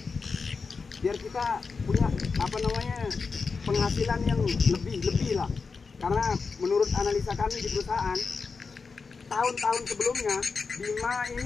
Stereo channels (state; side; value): quieter; right; 4.8 dB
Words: biar kita punya penghasilan yang lebih lah. Karena menurut analisa kami di perusahaan, tahun-tahun sebelumnya Bima ini